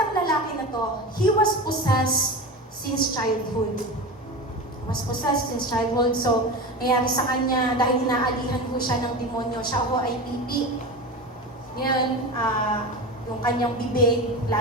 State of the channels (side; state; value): both; normal; correlation 0.26